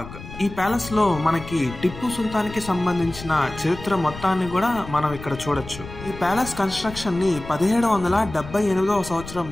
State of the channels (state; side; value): noise; left; rumble, 13 dB below the sound